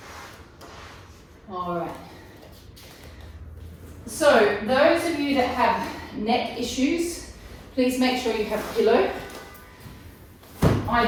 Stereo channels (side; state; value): both; identical; correlation 1.00